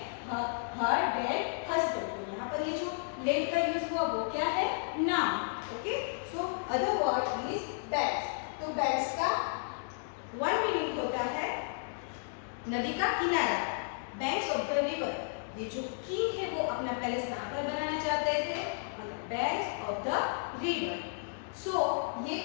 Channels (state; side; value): silent; right; digital silence